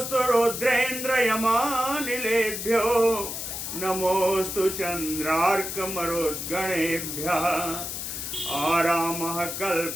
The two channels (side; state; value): left; noise; hiss, 5 dB below the sound